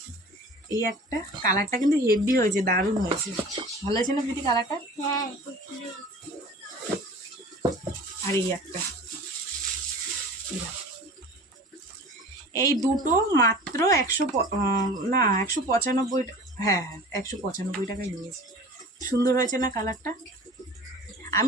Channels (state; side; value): normal; both; correlation 0.41